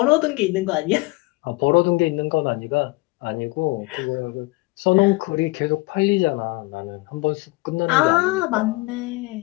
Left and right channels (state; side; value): quieter; right; 23.6 dB